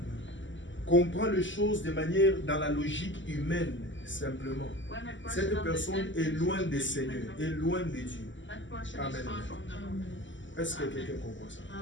comprend les choses de manière dans la logique humaine, simplement, when a person cette personne understands est things loin with des the Seigneurs, human est loin de Dieu. that person Amen. is far from the Lord. Est-ce que quelqu'un comprend ça?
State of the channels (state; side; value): late; right; 0.54 ms